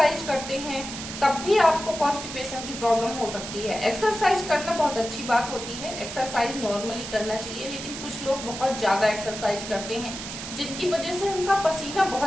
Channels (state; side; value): noise; right; hiss, 9 dB below the sound